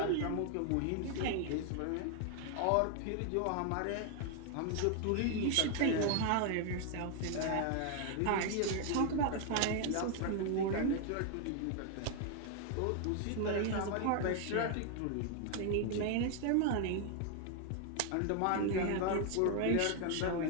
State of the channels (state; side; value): different; both; correlation 0.00